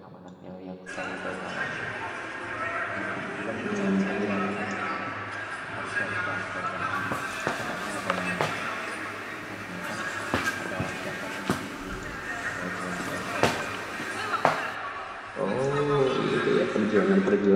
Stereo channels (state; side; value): identical; both; correlation 1.00